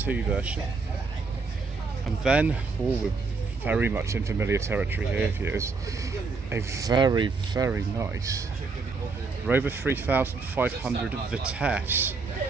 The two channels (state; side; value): quieter; left; 4.3 dB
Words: version. And then, we're very much in familiar territory here, is a very, very nice Rover 3500 Vitesse,